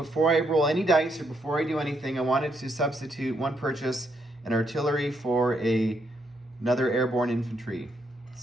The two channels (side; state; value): both; normal; correlation 0.76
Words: I roll any dice or before I do anything, I wanted to substitute one purchase, an artillery for another airborne infantry.